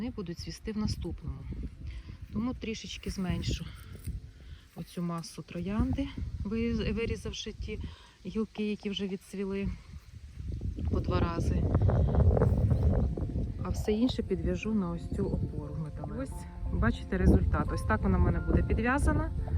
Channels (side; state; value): both; identical; correlation 1.00